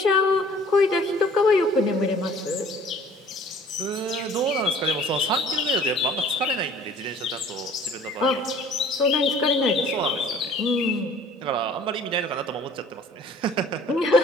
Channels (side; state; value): both; normal; correlation 0.52